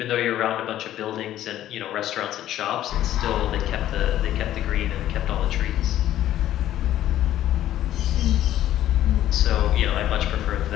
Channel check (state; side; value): quieter; right; 12.7 dB